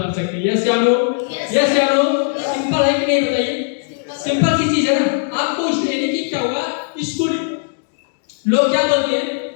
सकते हैं। यस या नो? यस या नो? सिंपल है कि नहीं बताइए? सिंपल सी चीज है ना। आपको यानी कि क्या होगा, स्कूल लोग क्या बोलते हैं,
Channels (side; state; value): right; silent; digital silence